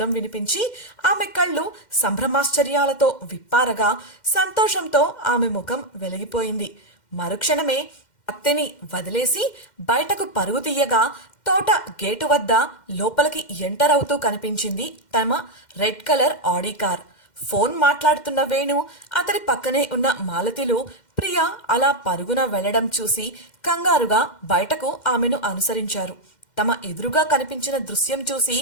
వినిపించి ఆమె కళ్ళు సంభ్రమాశ్చర్యాలతో విప్పారగా సంతోషంతో ఆమె ముఖం వెలిగిపోయింది. మరుక్షణమే కత్తిని వదిలేసి బయటకు పరుగు తీయగా తోట గేటు వద్ద లోపలికి ఎంటర్ అవుతూ కనిపించింది తమ red colour Audi car. Phone మాట్లాడుతున్న వేణు, అతడి పక్కనే ఉన్న మాలతిలు ప్రియ అలా పరుగున వెళ్లడం చూసి కంగారుగా బయటకు ఆమెను అనుసరించారు. తమ ఎదురుగా కనిపించిన దృశ్యం చూసి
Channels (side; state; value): right; late; 2.1 ms